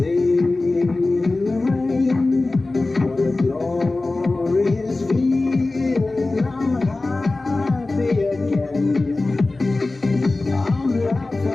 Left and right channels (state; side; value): quieter; right; 3.2 dB